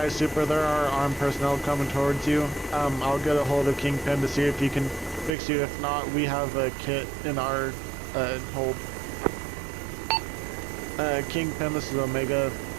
Super, there are armed personnel coming towards you. I'll get a hold of Kingpin to see if he can fix you. If not, we have a kit in our hold. Kingpin, this is Omega.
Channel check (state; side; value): drops out; left; at 5.4 s